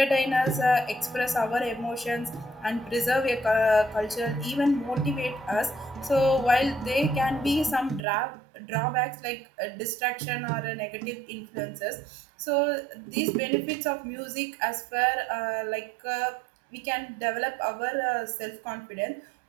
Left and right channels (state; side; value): drops out; left; at 8.1 s